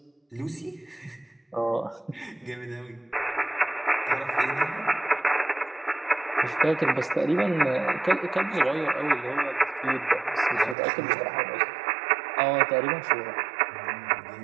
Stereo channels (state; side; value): drops out; left; at 10.8 s